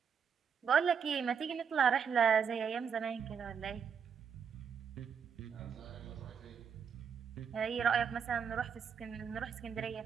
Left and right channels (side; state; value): left; quieter; 7.0 dB